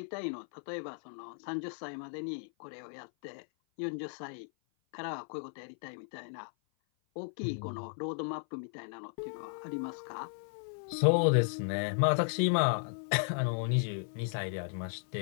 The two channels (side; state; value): right; silent; 54 dB below the other